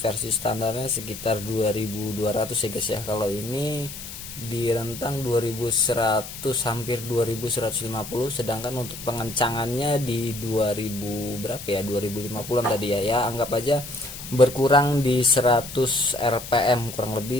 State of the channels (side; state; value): left; noise; hiss, 11 dB below the sound